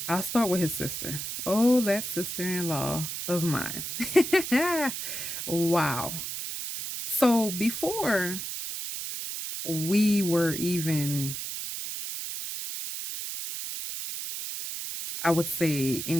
I'll start with his sister. Oh, that sister in law of mine. Wow. So before we were even, I would say,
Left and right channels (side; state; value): right; noise; hiss, 5 dB below the sound